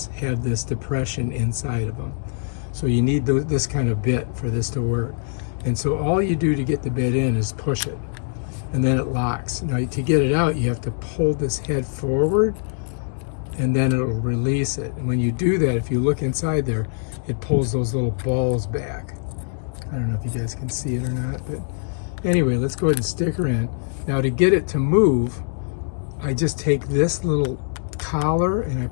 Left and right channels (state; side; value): silent; right; digital silence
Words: have this depression inside of them. So you need this kind of bit for this to work. And so all you do to get the bit in is push it. And then it locks. Now to get it out, you have to pull this head forward, and then it'll release it. And when you do that, if you look inside there, it pulls those little balls back. I don't know if you guys can see it or not, but anyway, let's go ahead and stick her in. Now to get it to move, I just take this little collar and I